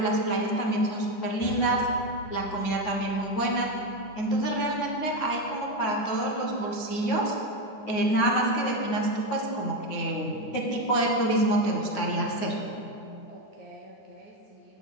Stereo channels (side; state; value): right; late; 9.4 ms